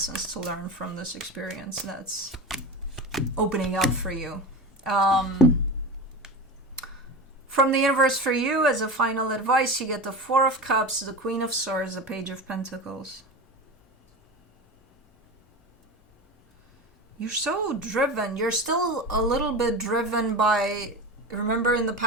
to learn from this experience that's opening up for you. From the universe for you, as a final advice, you get the 4 of Cups, the Queen of Swords, the Page of Pentacles. You're so driven. You're still a little bit driven by, remember in the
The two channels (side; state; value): both; normal; correlation 0.26